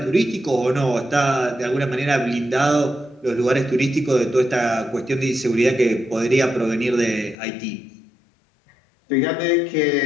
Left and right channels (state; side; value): drops out; right; at 7.4 s